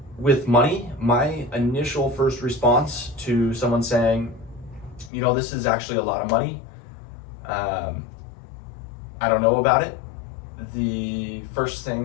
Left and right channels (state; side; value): drops out; right; at 5.1 s